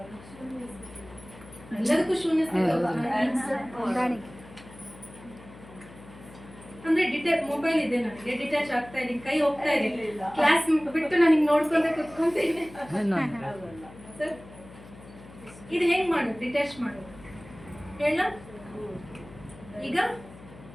ಎಲ್ಲದಕ್ಕೂ ಶೂನ್ಯ ಅಂದ್ರೆ ಮೊಬೈಲ್ ಇದೆ ನನಗೆ, ಡಿಟ್ಯಾಚ್ ಆಗ್ತಾ ಇದೆ, ಕೈ ಹೋಗ್ತಾ ಇದೆ, ಕ್ಲಾಸ್ ಬಿಟ್ಟು ನಾನು ನೋಡ್ಕೊಂತ ಕುತ್ಕೊಂತೀನಿ ಸರ್. ಇದು ಹೆಂಗ್ ಮಾಡೋದು? ಡಿಟ್ಯಾಚ್ ಮಾಡೋದು ಹೇಳ. ಈಗ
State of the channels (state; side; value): noise; left; hum, 19 dB below the sound